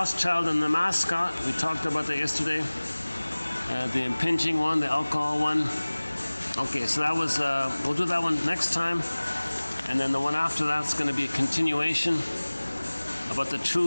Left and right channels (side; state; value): both; inverted; correlation -1.00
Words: child, and the mascot. We talked about that yesterday. The impinging one, the alcohol one. Okay, so that was, we'll do that one next time. And then the one after that's going to be a continuation about the